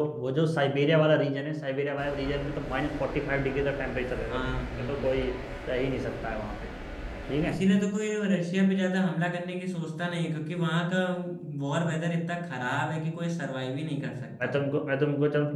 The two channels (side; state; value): both; identical; correlation 1.00